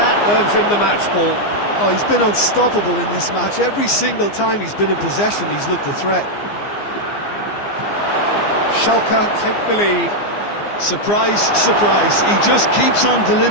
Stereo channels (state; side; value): late; right; 15 ms